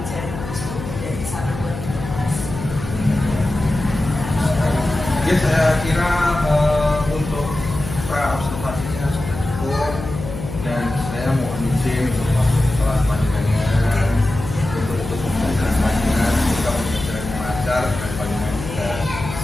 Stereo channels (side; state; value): left; noise; hum, 9 dB below the sound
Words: itu menjadi satu buah informasi. Ya saya kira untuk pra observasinya sudah cukup dan saya mohon izin untuk masuk ke kelas panjenengan untuk pembelajaran panjenengan, semoga pembelajaran yang lancar dan panjenengan juga